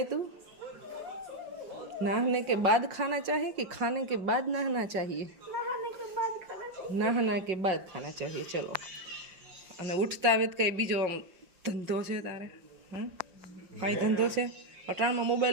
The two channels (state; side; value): late; left; 5.5 ms